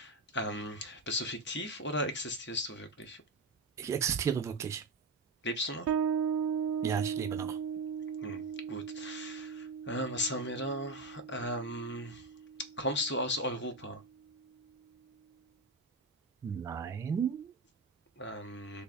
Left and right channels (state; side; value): quieter; left; 3.3 dB